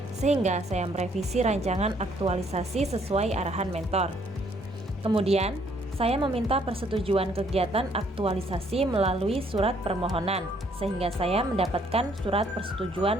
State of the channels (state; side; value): normal; both; correlation 0.66